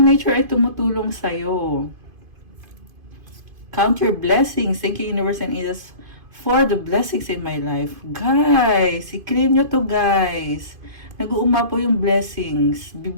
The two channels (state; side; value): late; left; 2.5 ms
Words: nature ay tumutulong sa'yo. Count your blessings. Thank you, universe and angels, for the blessings in my life. Guys, i-claim nyo to, guys. Nag-uuma po yung blessings.